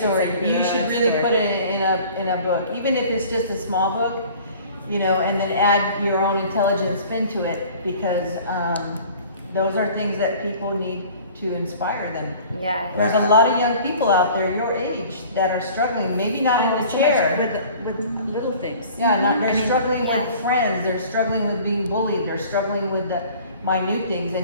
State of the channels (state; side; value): inverted; both; correlation -0.47